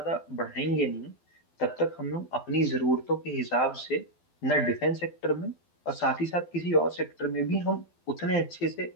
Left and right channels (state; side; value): late; right; 12 ms